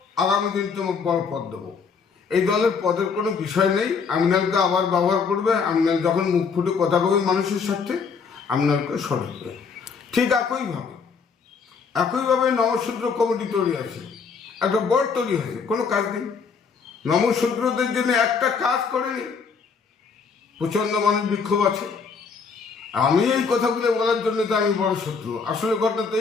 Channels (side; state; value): right; quieter; 5.5 dB